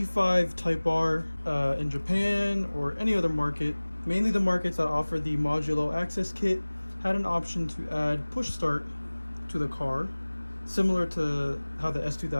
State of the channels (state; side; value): inverted; both; correlation -1.00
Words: Type R in Japan or any other market, mainly the markets that offer the modulo access kit, had an option to add push start to the car, similar to how the